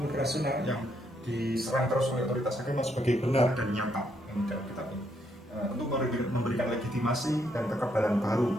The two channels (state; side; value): normal; both; correlation 0.75